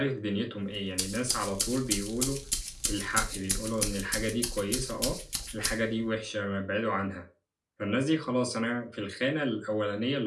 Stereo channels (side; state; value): both; identical; correlation 1.00